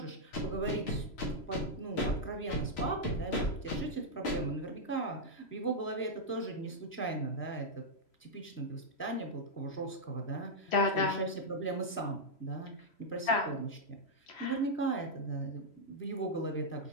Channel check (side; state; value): right; late; 3.0 ms